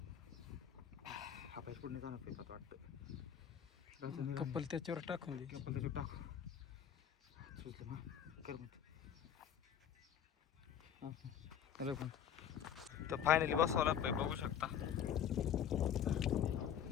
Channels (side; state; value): right; quieter; 8.9 dB